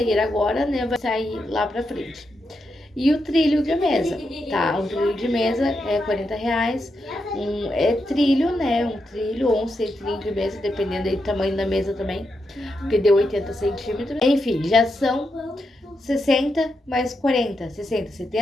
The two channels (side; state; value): both; normal; correlation 0.84